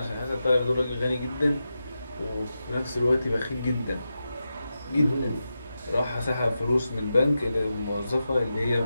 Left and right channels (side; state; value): both; inverted; correlation -0.90